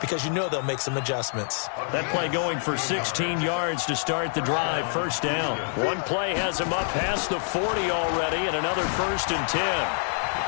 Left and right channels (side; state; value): right; silent; 61 dB below the other